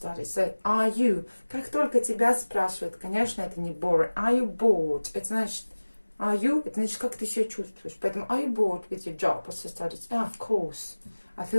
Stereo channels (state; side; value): inverted; both; correlation -1.00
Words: So, are you? Как только тебя спрашивают, конечно, это не boring. Are you bored? Это значит, are you? Это значит, как ты себя чувствуешь. Поэтому, are you bored with your job or your studies? Oh, of course. I